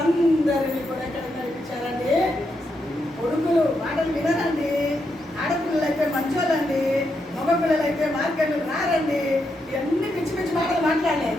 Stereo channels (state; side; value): normal; both; correlation 0.82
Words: కూడా ఎక్కడ నడిపించారండి? కొడుకులు మాటలు వినరండి, ఆడపిల్లలు అయితే మంచోళ్ళండి, మగ పిల్లలు అయితే మార్కెట్లు రారండి. ఇవన్నీ పిచ్చి పిచ్చి మాటలు